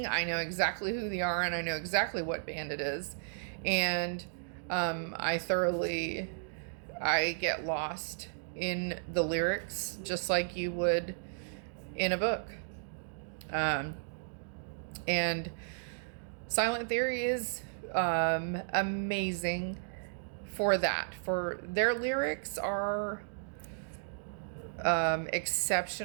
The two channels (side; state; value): left; silent; digital silence